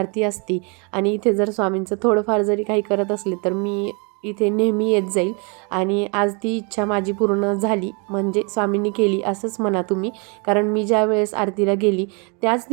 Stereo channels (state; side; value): quieter; left; 33.6 dB